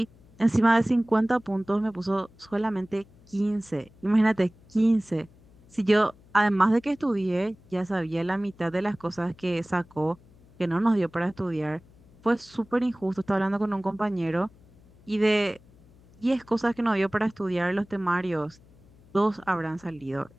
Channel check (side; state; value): left; noise; hum, 27 dB below the sound